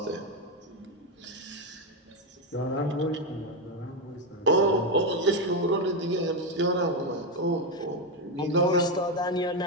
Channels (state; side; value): normal; both; correlation 0.08